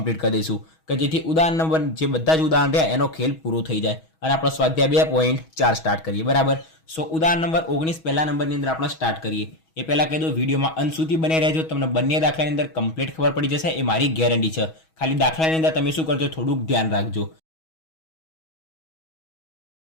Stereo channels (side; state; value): right; late; 6.2 ms